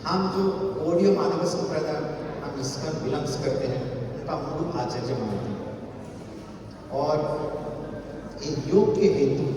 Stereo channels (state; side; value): identical; both; correlation 1.00